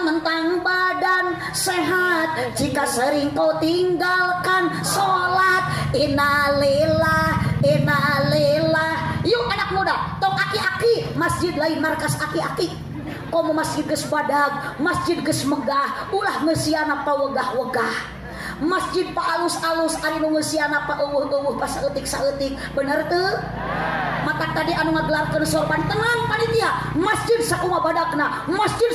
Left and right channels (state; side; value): identical; both; correlation 1.00